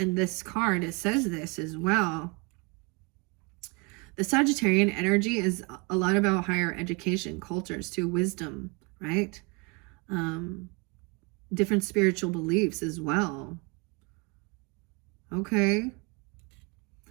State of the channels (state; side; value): quieter; left; 30.0 dB